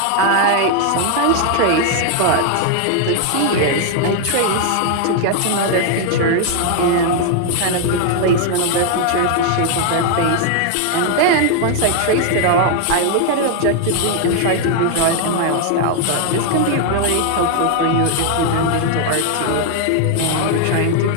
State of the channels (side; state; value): both; different; correlation 0.00